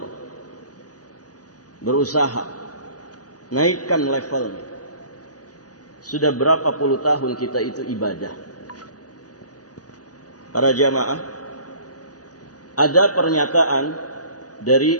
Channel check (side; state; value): right; late; 0.67 ms